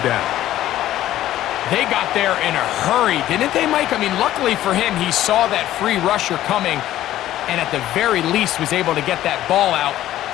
down. They got there in a hurry, didn't they, Mike? I mean, luckily for him, he saw that free rusher coming, and at the very least was able to get that ball out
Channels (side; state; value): right; quieter; 13.6 dB